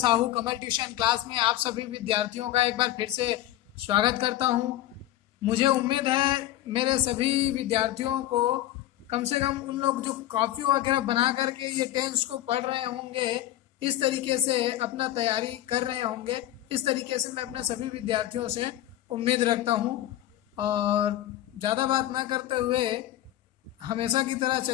कमल ट्यूशन क्लास में आप सभी विद्यार्थियों का एक बार फिर से स्वागत करता हूं। मुझे उम्मीद है मेरे सभी विद्यार्थियों को कम से कम उन लोग जो कॉपी वगैरह बना करके ये टेंस को पढ़ रहे होंगे, इस तरीके से अपना तैयारी कर रहे होंगे। इस तरीके से मैं अपने सभी विद्यार्थियों से उम्मीद रखता हूं। और ज़्यादा बात ना करते हुए हमेशा की तरह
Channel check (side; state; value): right; quieter; 13.9 dB